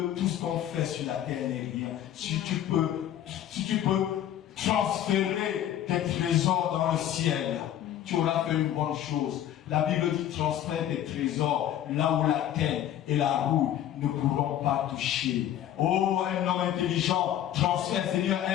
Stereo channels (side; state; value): right; quieter; 11.3 dB